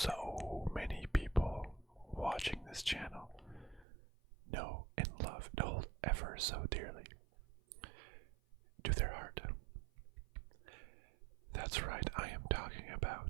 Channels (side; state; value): left; drops out; at 3.9 s